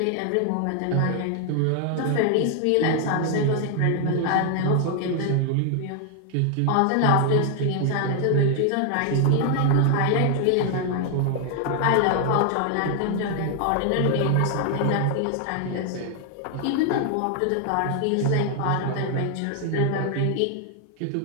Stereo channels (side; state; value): both; different; correlation 0.00